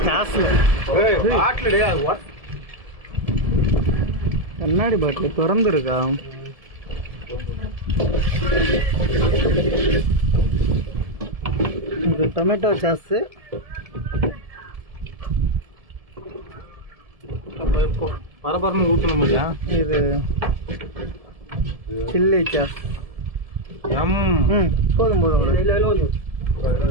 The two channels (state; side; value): late; left; 1.7 ms